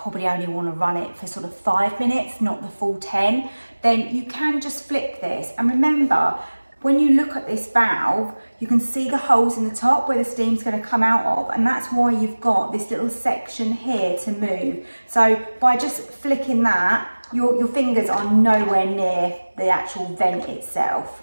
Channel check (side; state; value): both; inverted; correlation -1.00